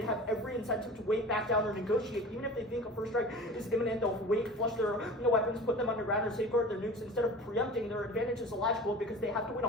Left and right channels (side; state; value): both; normal; correlation 0.37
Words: have every incentive to wait back down or negotiate. Even if they think a first strike is imminent, they'll wait, flush their weapons, put them underground, or safeguard their nukes. Instead of preempting, their advantage is illogical, because they have to win a